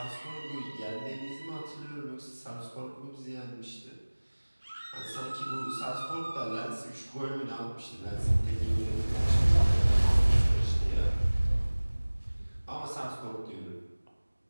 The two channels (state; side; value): inverted; both; correlation -1.00